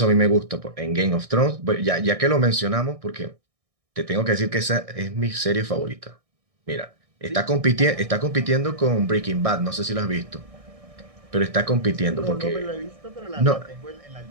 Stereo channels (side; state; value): left; late; 1.6 ms